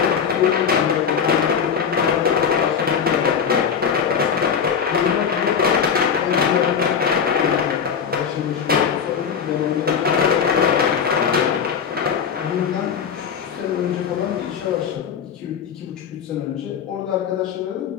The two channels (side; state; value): right; quieter; 7.1 dB